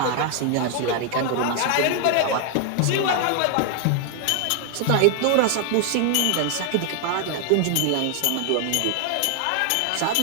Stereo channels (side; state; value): both; different; correlation 0.00